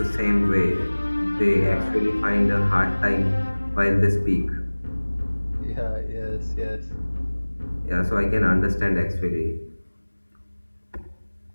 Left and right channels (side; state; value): both; inverted; correlation -1.00